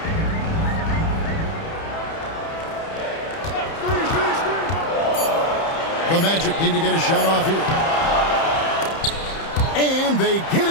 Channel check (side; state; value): right; late; 30 ms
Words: The Magic need to get a shot off here. And they get